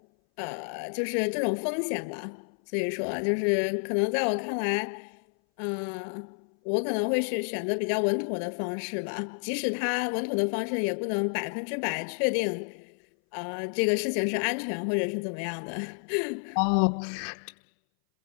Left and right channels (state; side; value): silent; right; 58 dB below the other